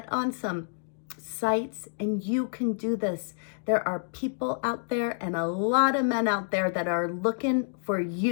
on some sites and you can do this. There are people out there and a lot of men out there that are looking for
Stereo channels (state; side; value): silent; right; digital silence